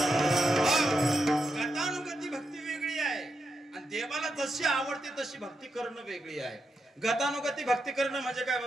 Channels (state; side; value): normal; both; correlation 0.85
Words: गतानुगती भक्ती वेगळी आहे आणि देवाला जशी आवडते तशी भक्ती करणं वेगळी आहे. गतानुगती भक्ती करणं म्हणजे काय